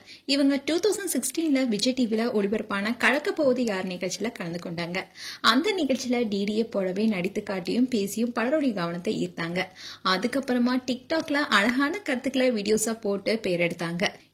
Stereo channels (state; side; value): identical; both; correlation 1.00